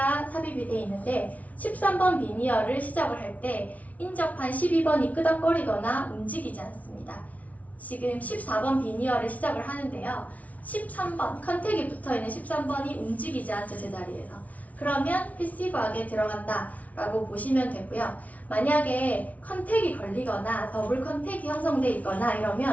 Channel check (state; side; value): late; right; 0.070 ms